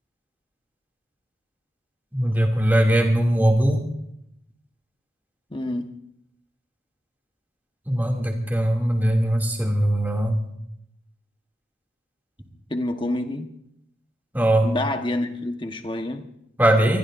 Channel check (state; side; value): normal; both; correlation 0.89